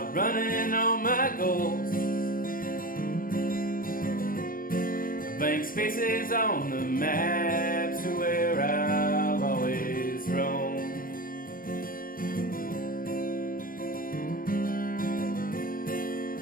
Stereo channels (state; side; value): late; right; 0.41 ms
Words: all my goals. Blank spaces on the maps are where I'll always roam.